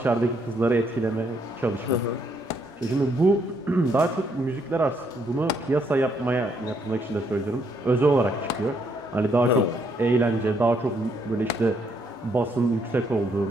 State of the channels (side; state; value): both; normal; correlation 0.72